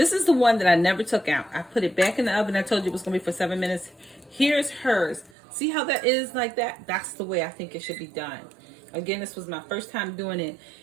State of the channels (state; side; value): drops out; left; at 5.3 s